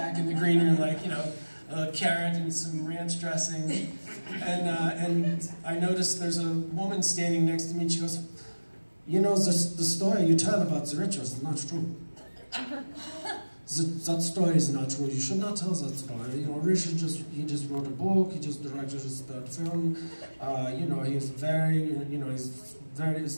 in the green room, like, a carrot and some ranch dressing. And I noticed there's a woman standing next to me, and she goes, the story you tell about the rituals is not true. That story is not true. You should not tell that story. Richard just wrote a book. He just directed his third film. He's very, it's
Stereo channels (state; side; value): inverted; both; correlation -1.00